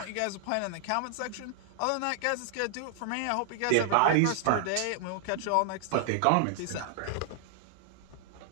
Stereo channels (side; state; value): both; different; correlation -0.01